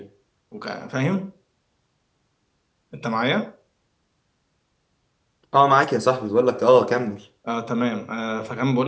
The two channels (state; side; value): identical; both; correlation 1.00